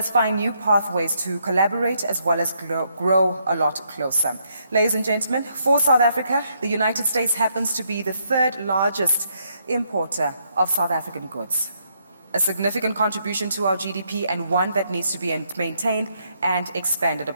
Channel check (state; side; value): inverted; both; correlation -0.75